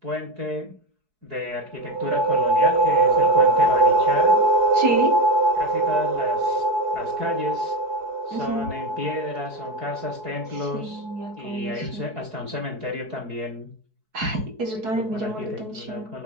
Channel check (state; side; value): late; left; 4.7 ms